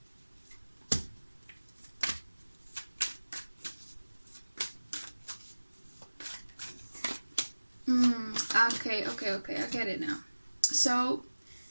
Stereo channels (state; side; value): inverted; both; correlation -1.00